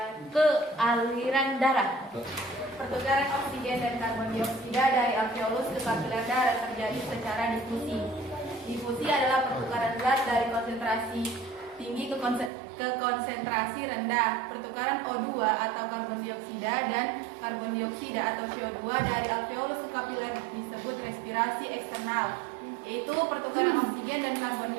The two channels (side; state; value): left; drops out; at 12.5 s